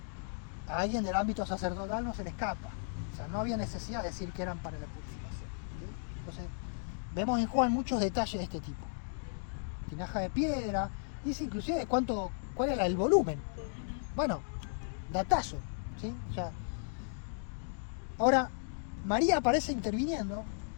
a alguien del ámbito sacerdotal no se le escapa. O sea, no había necesidad de decir que eran para la purificación. ¿Sí? Entonces, vemos en Juan muchos detalles de este tipo. Tinaja de piedra, dice inclusive cuál era el volumen. Bueno, datazo, ¿sí? O sea, ahora, María aparece interviniendo,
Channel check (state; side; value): silent; right; digital silence